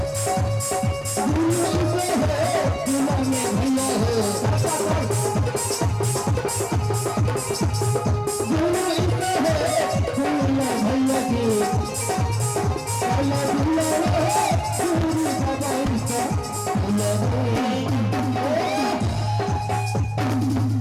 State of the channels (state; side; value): identical; both; correlation 1.00